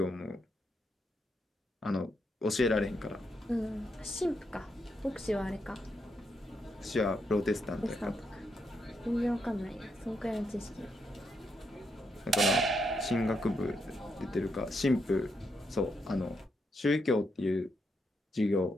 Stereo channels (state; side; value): normal; both; correlation 0.80